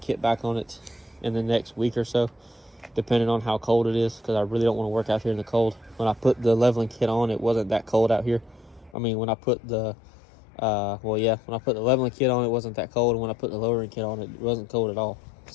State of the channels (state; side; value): drops out; right; at 9.0 s